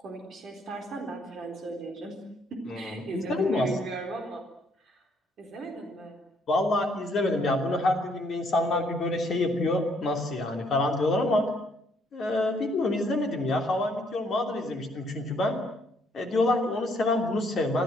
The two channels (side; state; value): both; normal; correlation 0.68